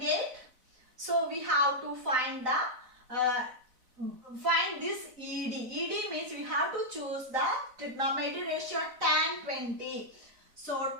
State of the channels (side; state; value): left; late; 4.0 ms